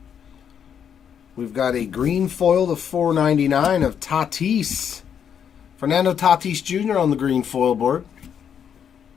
We've got a green foil to 499 of Tatis. Fernando Tatis Jr. on the green foil board.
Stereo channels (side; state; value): right; quieter; 8.1 dB